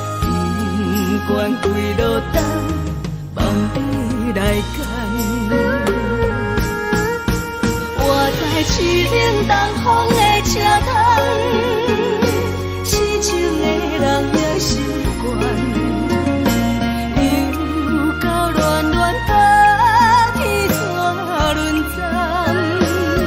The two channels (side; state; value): both; identical; correlation 1.00